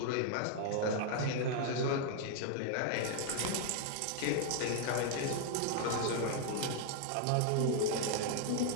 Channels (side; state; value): both; different; correlation 0.00